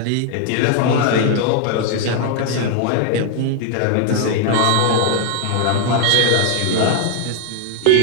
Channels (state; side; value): different; both; correlation 0.00